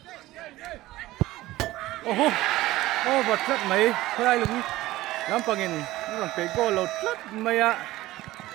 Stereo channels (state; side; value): quieter; left; 17.1 dB